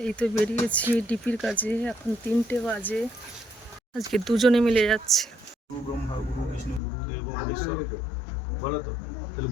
এই তো বেরিয়েছি ডিপির কাজে, এখন 3টে বাজে। আজকে দুজনে মিলে যাচ্ছে। গুরু ব্রহ্মা গুরু বিষ্ণু গুরু দেব মহেশ্বর বলো তো, তাহলে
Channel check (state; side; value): drops out; right; at 6.8 s